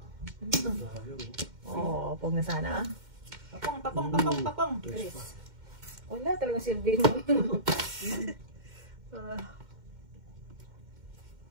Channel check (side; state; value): left; late; 2.1 ms